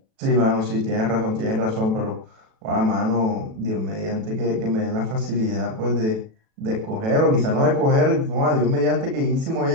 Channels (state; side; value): late; left; 37 ms